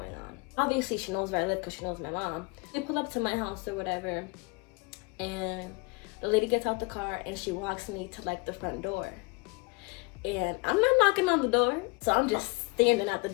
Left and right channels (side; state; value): right; quieter; 27.4 dB